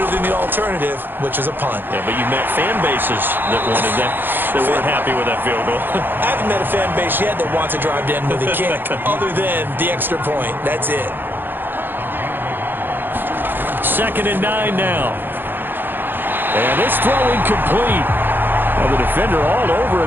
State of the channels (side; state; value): left; late; 0.097 ms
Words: than the alternative, which is a punt. Yeah, but you met fan bases that wanted that, that weren't happy with that field goal. I haven't met a fan base yet that wants to drive to end with a kick, other than the extra point. That's it. 2nd and 9 now. And this throw incomplete. Well, the defender all over